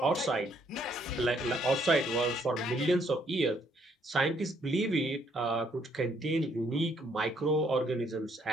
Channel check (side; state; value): both; normal; correlation 0.69